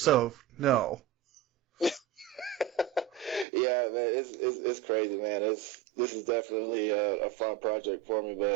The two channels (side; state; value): left; drops out; at 3.5 s